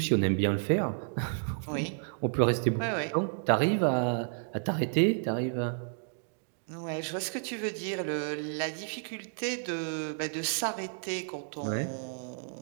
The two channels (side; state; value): left; silent; digital silence